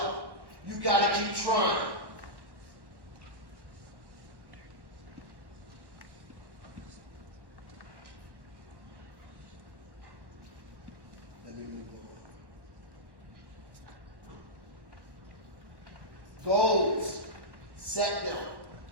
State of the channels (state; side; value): late; left; 1.1 ms